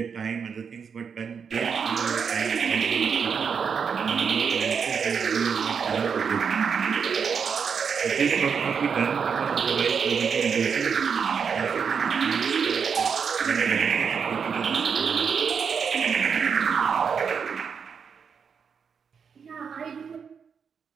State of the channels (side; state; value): left; quieter; 6.4 dB